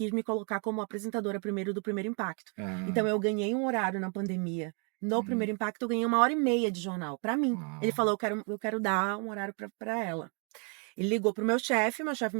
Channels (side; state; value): left; quieter; 38.0 dB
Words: me colocar como apresentadora primeiro do Primeiro Impacto. Então eu ganhei um horário na pandemia No Primeiro Impacto, eu ganhei 1h30 de jornal, pra mim. Ah. Ele falou, eu quero dar um horário pra ela. Ele ligou pro meu chefe